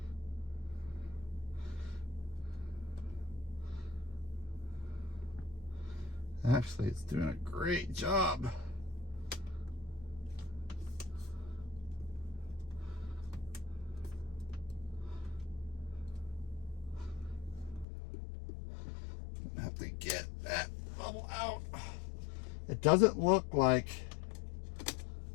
Actually, it's doing a great job. Have to get that bubble out. It doesn't look like,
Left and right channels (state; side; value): drops out; right; at 17.9 s